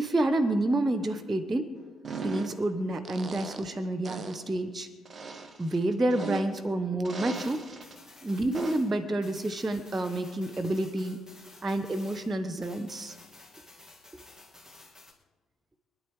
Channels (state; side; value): normal; both; correlation 0.87